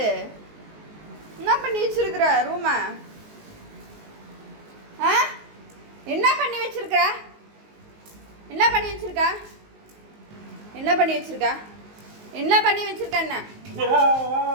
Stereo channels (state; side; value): late; left; 19 ms